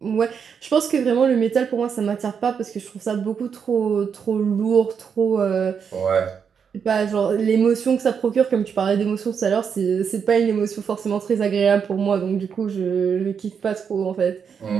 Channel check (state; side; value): quieter; left; 6.8 dB